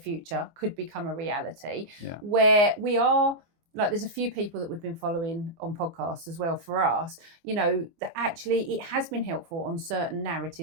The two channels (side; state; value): left; late; 24 ms